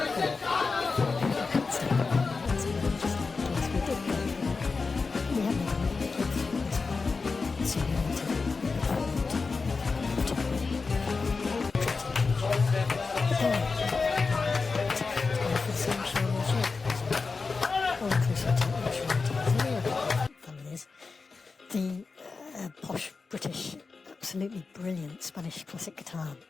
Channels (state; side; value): quieter; right; 4.4 dB